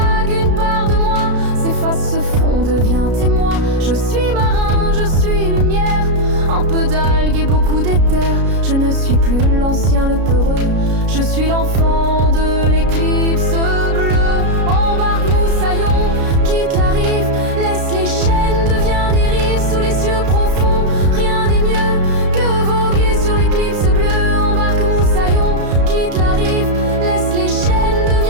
une part de moi s'efface, se fond, devient témoin. Je suis marin, je suis lumière, un peu d'algues et beaucoup d'éther. Je ne suis plus l'ancien, le peureux, je suis l'enfant de l'éclipse bleue. Embarque moussaillon, quitte la rive, laisse les chaînes, deviens dérive sous les cieux profonds. Rien n'est mieux que voguer sur l'éclipse bleue. Embarque moussaillon, quitte la rive, laisse les chaînes,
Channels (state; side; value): late; left; 33 ms